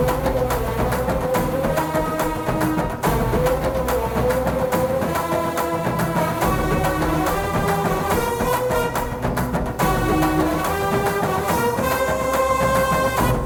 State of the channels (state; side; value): identical; both; correlation 1.00